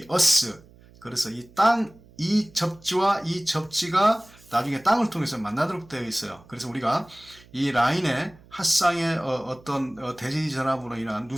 어스. 그래서 이 접지와 이 접지가 나중에 땅을 통해서 만나도록 되어 있어요. 그래서 우리가 이 라인의 핫상의 어떤 대지 전압으로 인한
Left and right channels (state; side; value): noise; right; hum, 25 dB below the sound